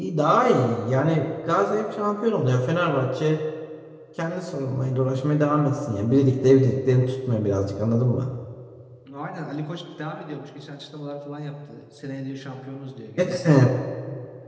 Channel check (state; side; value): identical; both; correlation 1.00